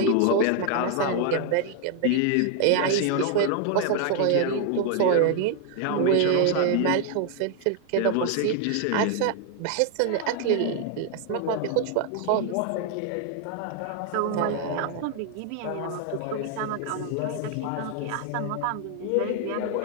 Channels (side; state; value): both; different; correlation 0.00